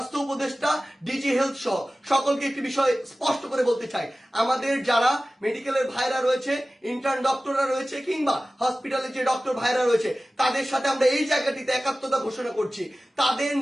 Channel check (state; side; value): normal; both; correlation 0.96